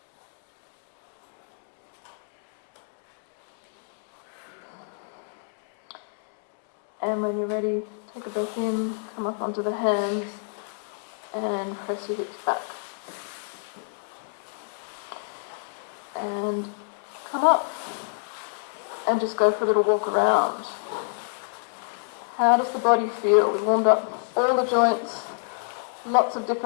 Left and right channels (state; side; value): silent; right; digital silence